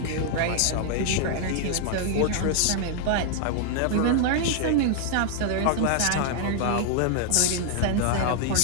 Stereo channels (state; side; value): different; both; correlation 0.00